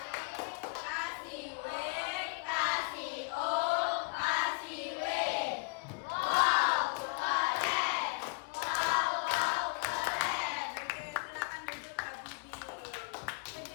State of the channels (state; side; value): quieter; right; 34.2 dB